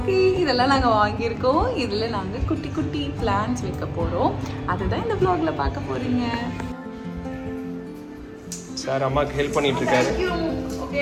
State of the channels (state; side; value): identical; both; correlation 1.00